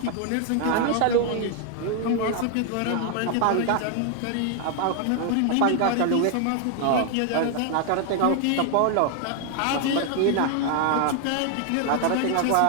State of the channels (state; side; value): different; both; correlation 0.00